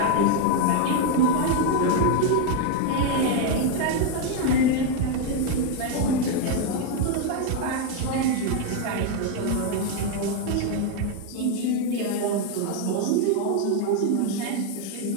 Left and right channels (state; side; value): different; both; correlation 0.01